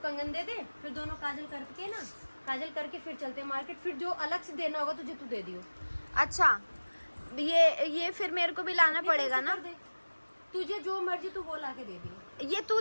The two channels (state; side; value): inverted; both; correlation -1.00